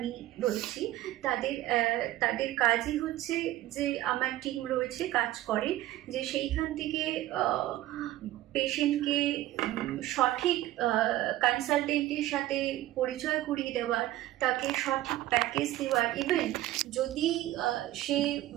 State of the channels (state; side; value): quieter; left; 15.2 dB